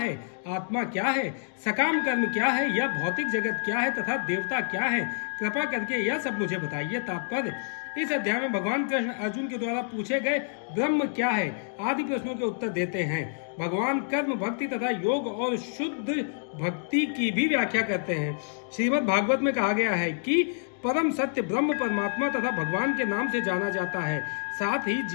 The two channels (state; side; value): silent; right; digital silence